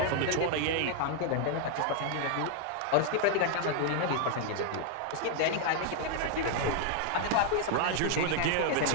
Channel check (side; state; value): both; different; correlation 0.00